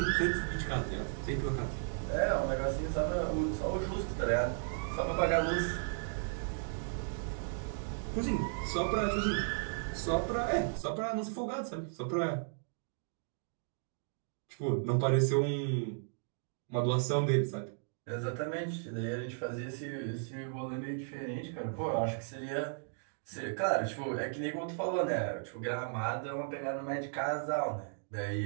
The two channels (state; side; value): silent; left; digital silence